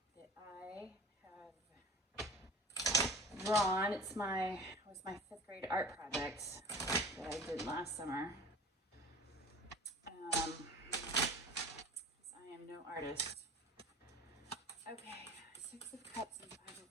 that I have drawn. It was my 5th grade art project that I did last summer. I am no artist. Okay, 6 of Cups and 5 of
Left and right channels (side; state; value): both; normal; correlation 0.40